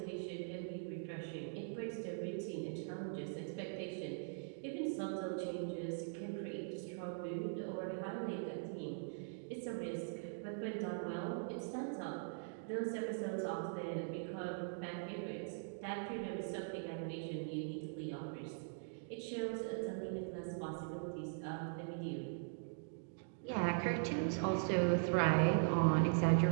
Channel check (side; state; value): left; silent; digital silence